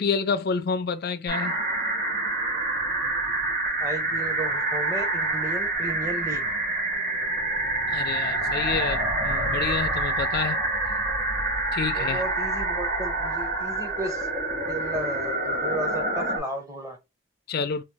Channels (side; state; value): both; normal; correlation 0.06